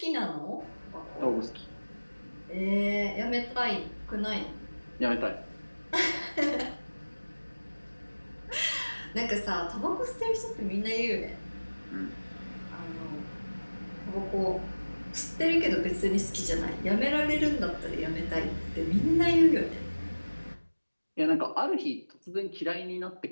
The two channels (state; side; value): inverted; both; correlation -1.00